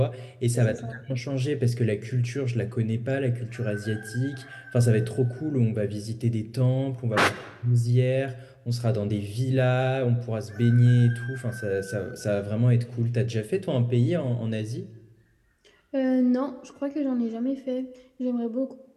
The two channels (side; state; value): both; identical; correlation 1.00